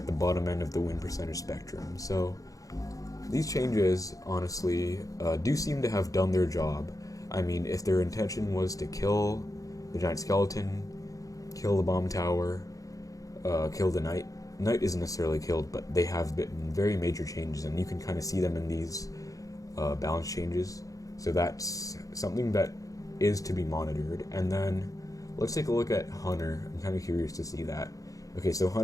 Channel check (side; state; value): right; late; 0.17 ms